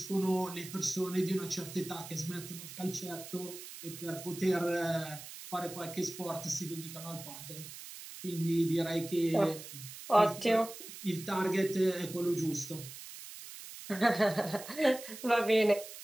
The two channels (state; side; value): noise; right; hiss, 13 dB below the sound